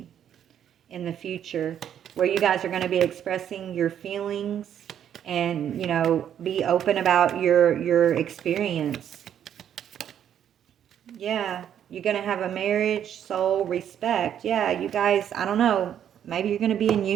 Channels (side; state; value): left; quieter; 9.6 dB